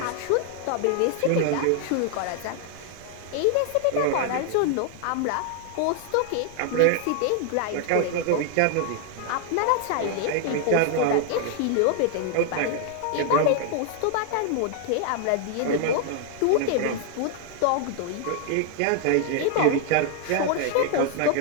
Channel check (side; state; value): both; different; correlation 0.00